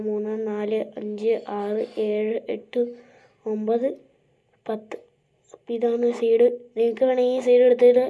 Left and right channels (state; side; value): identical; both; correlation 1.00